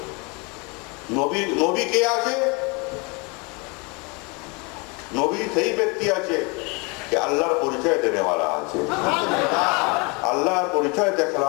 নবী কে আছে? নবী সেই ব্যক্তি আছে कि अल्लाह परिचय देने वाला আছে, अल्लाह परिचय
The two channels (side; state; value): right; quieter; 30.0 dB